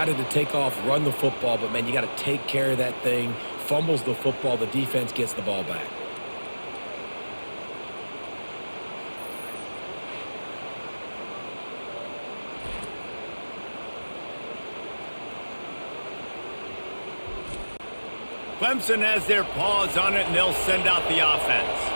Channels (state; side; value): inverted; both; correlation -1.00